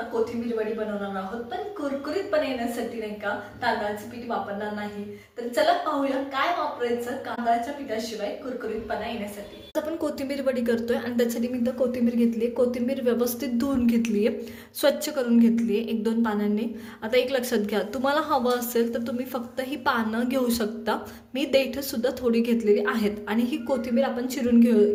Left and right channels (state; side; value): identical; both; correlation 1.00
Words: कोथिंबीर वडी बनवणार आहोत, पण कुरकुरीतपणे येण्यासाठी नाही का तांदळाचे पीठ वापरणार नाही। तर चला पाहूया काय वापरायचं तांदळाच्या पिठाशिवाय कुरकुरीतपणा येण्यासाठी। आपण कोथिंबीर वडी करतोय आणि त्यासाठी मी इथं कोथिंबीर घेतली। कोथिंबीर व्यवस्थित धुवून घेतली आहे, स्वच्छ करून घेतली आहे 1-2 पानांनी। आता एक लक्षात घ्या, तुम्हाला हवं असेल तर तुम्ही फक्त ही पानं घेऊ शकता। मी देठ सुद्धा थोडी घेतलेली आहेत आणि ही कोथिंबीर आपण चिरून